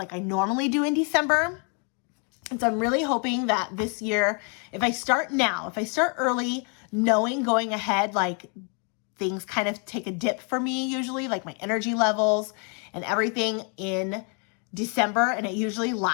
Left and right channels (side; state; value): right; quieter; 37.9 dB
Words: I normally do in December. And so I'm really hoping that this year, if I start early, knowing going ahead, like things kind of take a dip for me usually, like my energy levels and everything in December. And it usually